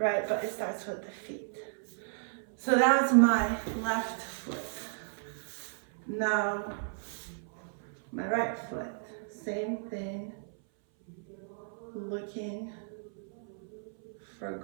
But it starts with the feet. So that was my left foot. Now, my right foot, same thing, looking for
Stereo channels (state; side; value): silent; left; 55 dB below the other